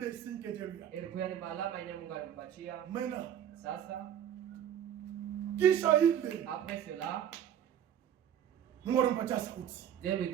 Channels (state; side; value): quieter; left; 9.9 dB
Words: signes que Dieu lui a. Maintenant, après cela, Dieu lui